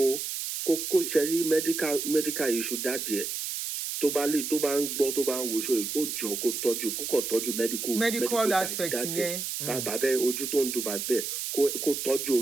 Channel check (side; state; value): right; noise; hiss, 4 dB below the sound